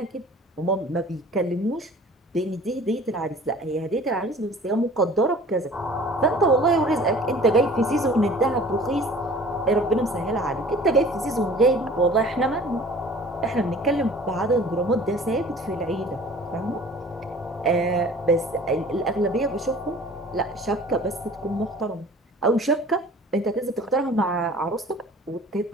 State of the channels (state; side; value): normal; both; correlation 0.47